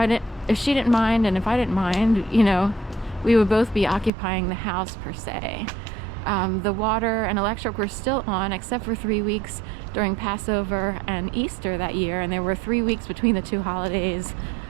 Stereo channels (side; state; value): left; drops out; at 4.1 s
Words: she didn't mind and if I didn't mind, we would both be occupying the house per se. The water and electric were still on except for 3 weeks during Passover and Easter that year, and there were 3 weeks between the two holidays,